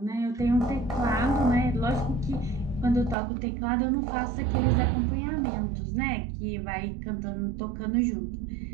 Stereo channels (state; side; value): drops out; left; at 3.2 s